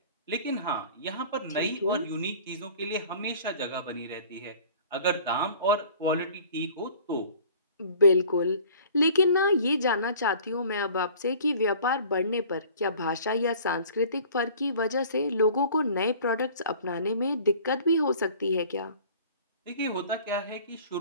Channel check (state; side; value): inverted; both; correlation -0.47